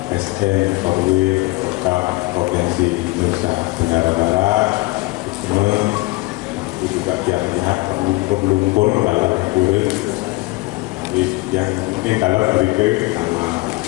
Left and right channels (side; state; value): right; quieter; 22.0 dB